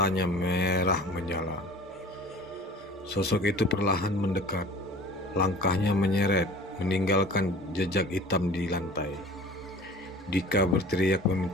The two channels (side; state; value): both; normal; correlation 0.44